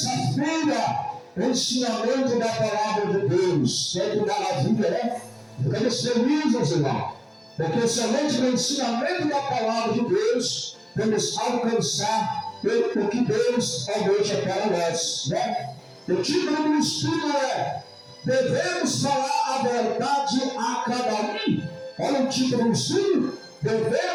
ensinamento da palavra de Deus. Que maravilha, né? Ficamos felizes, irmão, porque somente no ensinamento da palavra de Deus vamos alcançar o que Deus almeja para nós, né? O título do estudo é: devemos falar a verdade a cada um. Olha o título do estudo:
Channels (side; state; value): both; identical; correlation 1.00